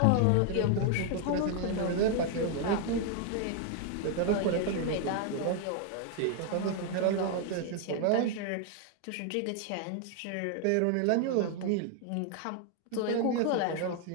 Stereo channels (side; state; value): both; different; correlation 0.00